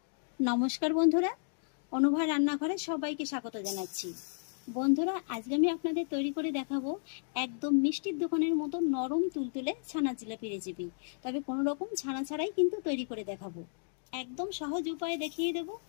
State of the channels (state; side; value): silent; right; digital silence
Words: নমস্কার বন্ধুরা, অনুভা রান্নাঘরে সবাইকে স্বাগত জানাচ্ছি। বন্ধুরা, আজকে আমি আপনাদের তৈরি করে দেখাবো একদম মিষ্টির দোকানের মতো নরম তুলতুলে ছানা জিলাপি রেসিপি। তবে কোনো রকম ছানা ছাড়াই কিন্তু তৈরি করে দেখাবো। একদম সহজ উপায়ে দেখিয়ে দেব।